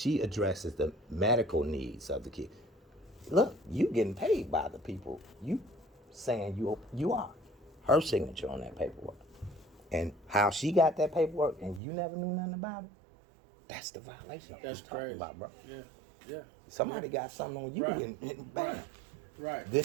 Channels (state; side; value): drops out; left; at 11.8 s